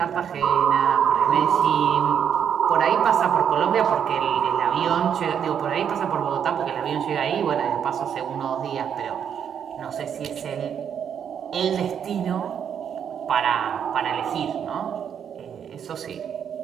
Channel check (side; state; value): left; quieter; 8.2 dB